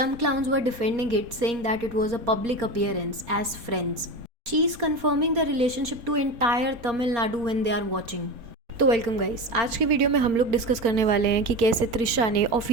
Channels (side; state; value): left; late; 4.2 ms